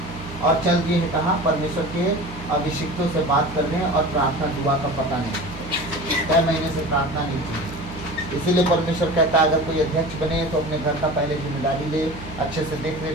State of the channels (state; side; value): noise; right; hum, 14 dB below the sound